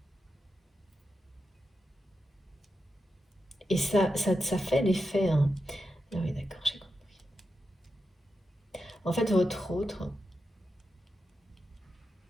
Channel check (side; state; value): both; normal; correlation 0.88